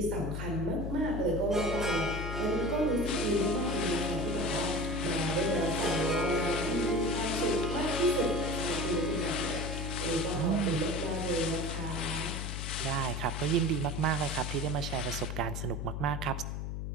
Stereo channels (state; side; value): noise; left; hum, 4 dB below the sound